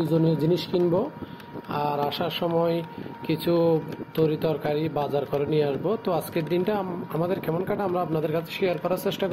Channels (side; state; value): both; identical; correlation 1.00